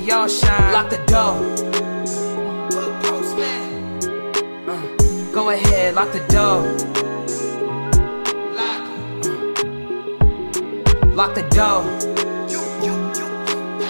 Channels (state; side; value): inverted; both; correlation -1.00